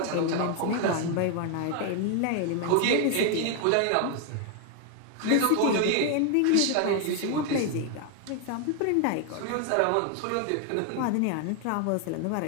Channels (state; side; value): different; both; correlation 0.01